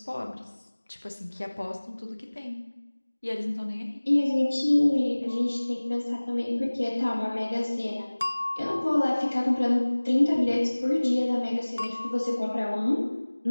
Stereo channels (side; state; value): both; inverted; correlation -1.00